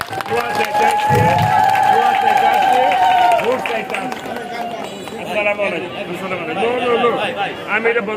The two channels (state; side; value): identical; both; correlation 1.00